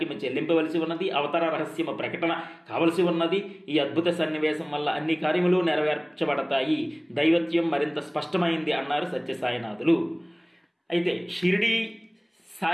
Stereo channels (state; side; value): identical; both; correlation 1.00